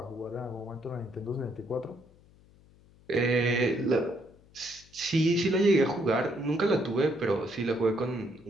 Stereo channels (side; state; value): left; noise; hum, 27 dB below the sound